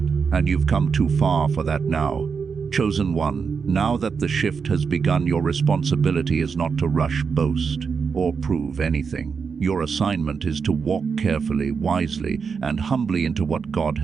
and you've come too far for that now. Chosen one, now that the shift has begun, your responsibility is not to rush, boast, or prove anything. Your assignment is to walk carefully, wisely, and humbly into what God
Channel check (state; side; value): quieter; left; 5.7 dB